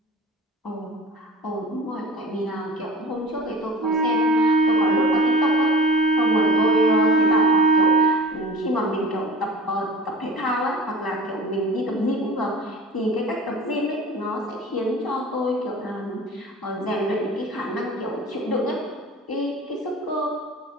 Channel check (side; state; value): both; normal; correlation 0.38